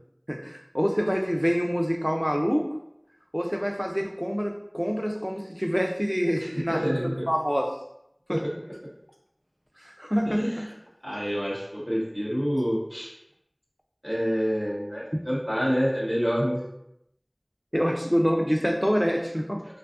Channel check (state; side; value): identical; both; correlation 1.00